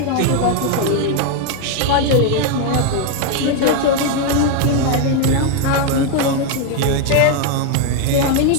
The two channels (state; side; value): different; both; correlation 0.01